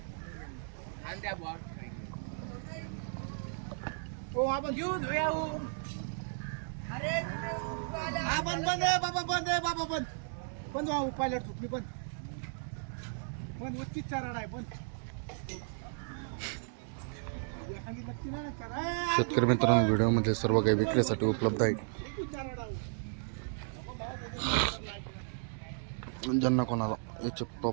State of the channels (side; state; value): left; silent; digital silence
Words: शेतकरी मित्रांनो, व्हिडिओमध्ये सर्व काही विक्रीसाठी उपलब्ध आहे. ज्यांना कोणाला याच्या